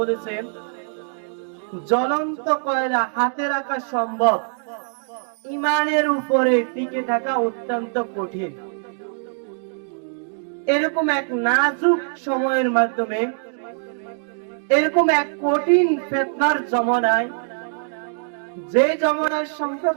বলেছেন জ্বলন্ত কয়লা হাতে রাখা সম্ভব, ঈমানের উপরে টিকে থাকা অত্যন্ত কঠিন। এরকম এক নাজুক সময়ের মাধ্যমে, এরকম এক কঠিন ফিতনার জামানায়, যে জামানার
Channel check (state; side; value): silent; left; digital silence